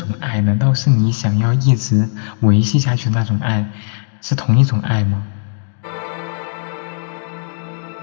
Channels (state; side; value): silent; right; digital silence